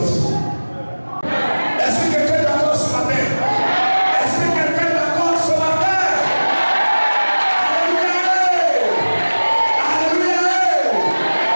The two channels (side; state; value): both; inverted; correlation -1.00